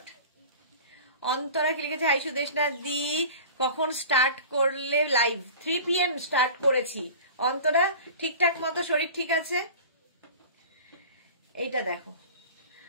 অন্তরা কি লিখেছে, হাই সুদেশনা দি কখন স্টার্ট করলে লাইভ? 3 PM স্টার্ট করেছি। অন্তরা ঠিকঠাক মতো শরীর ঠিক আছে? এইটা দেখো,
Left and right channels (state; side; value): inverted; both; correlation -0.39